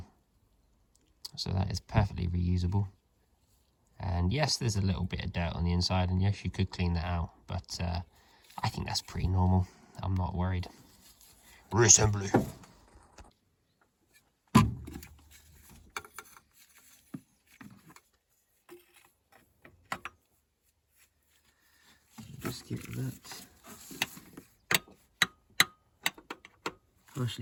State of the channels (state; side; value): identical; both; correlation 1.00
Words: So that is perfectly reusable. And yes, there's a little bit of dirt on the inside, and yes, you could clean that out, but I think that's pretty normal. I'm not worried. Reassembly. Just get that